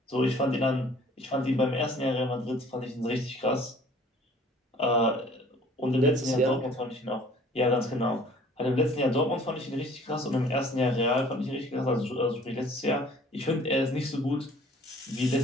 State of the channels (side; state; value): both; normal; correlation 0.53